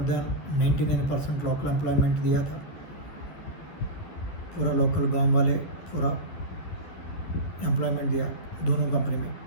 देन 99% लोकल एम्प्लॉयमेंट दिया था। पूरा लोकल गांव वाले पूरा एम्प्लॉयमेंट दिया दोनों कंपनी में।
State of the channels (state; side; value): late; right; 11 ms